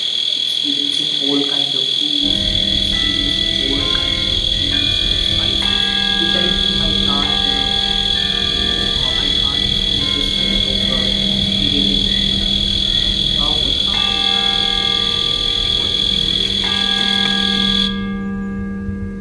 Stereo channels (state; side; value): identical; both; correlation 1.00